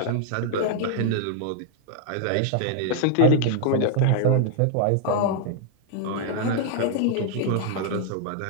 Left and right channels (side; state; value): both; different; correlation 0.00